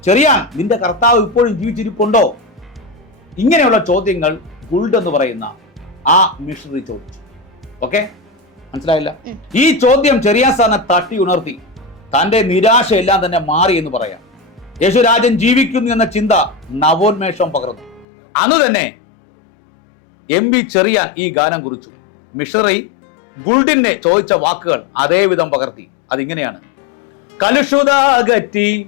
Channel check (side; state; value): right; drops out; at 18.1 s